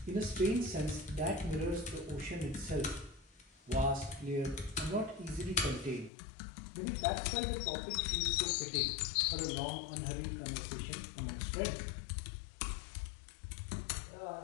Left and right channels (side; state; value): right; drops out; at 6.1 s